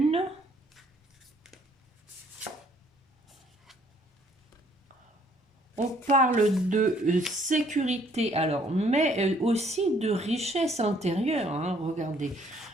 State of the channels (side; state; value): both; normal; correlation 0.63